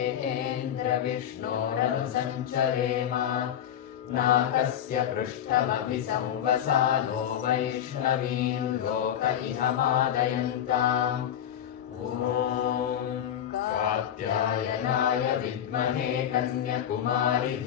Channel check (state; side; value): quieter; right; 10.0 dB